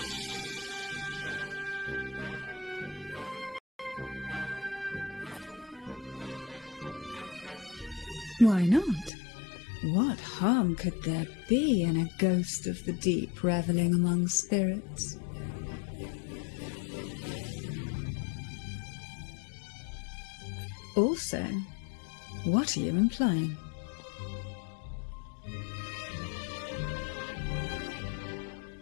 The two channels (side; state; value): right; drops out; at 9.1 s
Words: Why not? What harm could there be in a ghost of the deep reveling among spirits? Also, what are you implying?